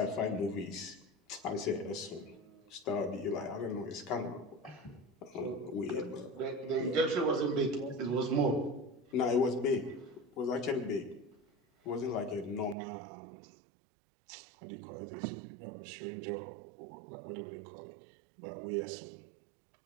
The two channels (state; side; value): drops out; left; at 12.8 s